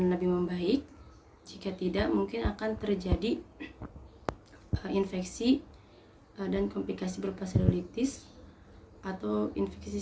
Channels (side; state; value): both; identical; correlation 1.00